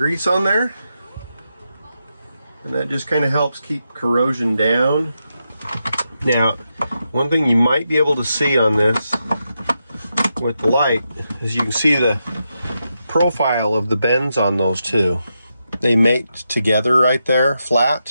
on there. And that just kind of helps keep corrosion down. Now, one thing you might be able to see on this with the light is you can see the profile of the bends on those two. They mate together right there,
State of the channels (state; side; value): inverted; both; correlation -0.86